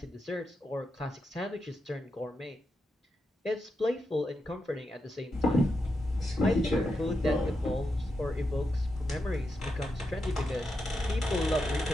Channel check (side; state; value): both; normal; correlation 0.86